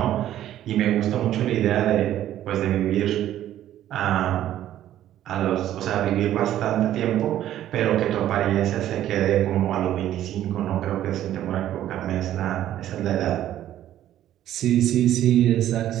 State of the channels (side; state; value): left; quieter; 12.3 dB